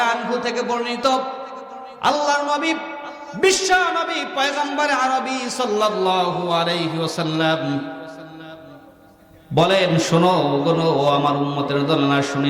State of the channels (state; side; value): identical; both; correlation 1.00